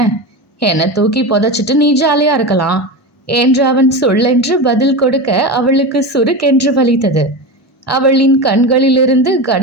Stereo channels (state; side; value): normal; both; correlation 0.22